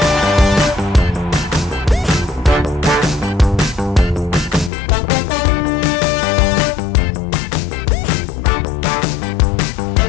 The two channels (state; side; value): drops out; right; at 4.7 s